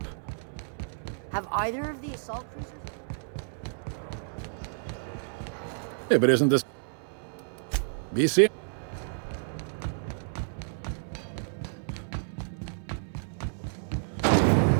Have either of the assault cruisers? Yeah, but isn't this... BC?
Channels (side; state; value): left; silent; 58 dB below the other